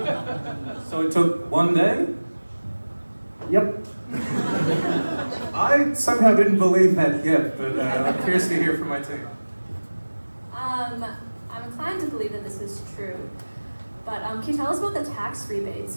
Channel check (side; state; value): both; inverted; correlation -1.00